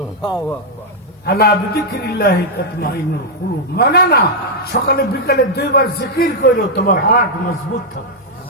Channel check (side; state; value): both; normal; correlation -0.03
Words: আলা বিযিকরিল্লাহি তাতমাইন্নুল কুলুব। মানে না, সকালে বিকালে 2 বার জিকির করো, তোমার হার্ট মজবুত থাকবে।